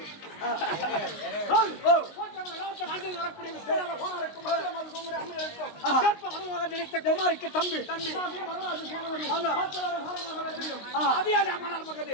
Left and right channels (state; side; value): late; right; 19 ms